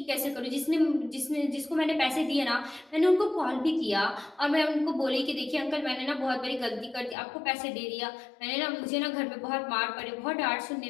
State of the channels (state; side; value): drops out; right; at 7.2 s